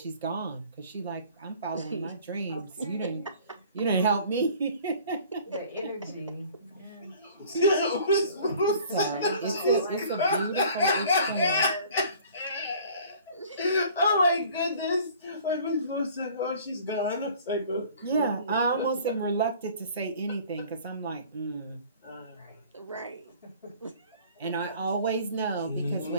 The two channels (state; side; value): inverted; both; correlation -0.50